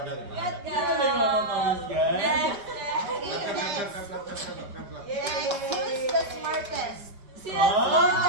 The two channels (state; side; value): late; left; 5.1 ms